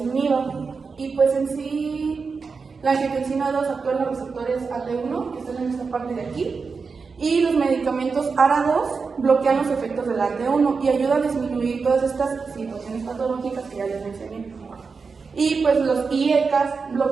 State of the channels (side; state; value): left; quieter; 4.9 dB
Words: inhiba. Y pues en sí, la angiotensina 2 actúa en los receptores AT1, que están en esta parte de aquí, y los medicamentos ARA2 bloquean los efectos del AT1 y ayudan a disminuir todas estas situaciones patológicas que ya les mencioné. Y pues los IECAS